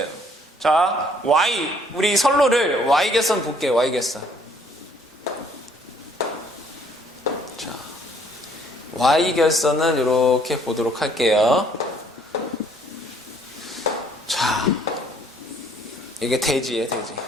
자, Y, 우리 선로를 Y개선 볼게요. Y개선. 자, Y결선은 이렇게 보도록 할게요. 자, 이게 대지예요, 대지.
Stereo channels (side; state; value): both; normal; correlation 0.62